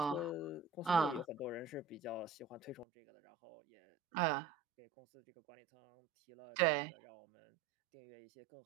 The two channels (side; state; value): left; drops out; at 2.9 s